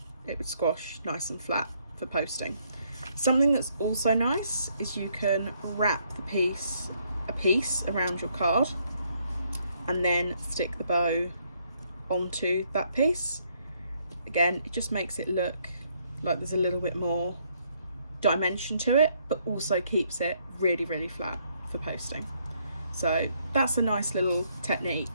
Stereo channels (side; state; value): both; inverted; correlation -0.71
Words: it would squash nice and flat for posting. Something that's also nice is you can wrap a piece around your card and then stick the bow onto that piece. Again, it just makes it look like there's a little bit more dimension to it, but also keeps it really, really flat for posting. So that's a nice little